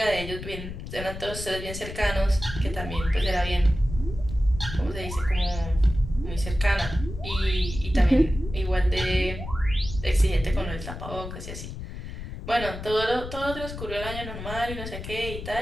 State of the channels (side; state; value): left; noise; rumble, 9 dB below the sound